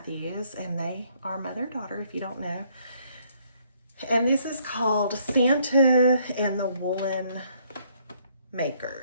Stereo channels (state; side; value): inverted; both; correlation -0.67